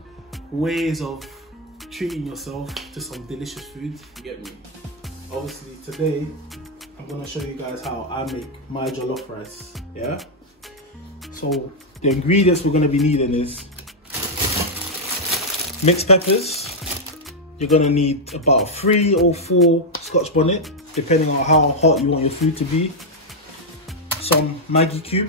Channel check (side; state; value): both; normal; correlation -0.01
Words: ways of treating yourself to some delicious food. You get me? Obviously today I'm gonna show you guys how I make my jollof rice. Yeah, so the ingredients we're gonna be needing is mixed peppers. You're gonna need about 3 or 4 Scotch bonnet, depending on how hot you want your food to be. Some Maggi cube,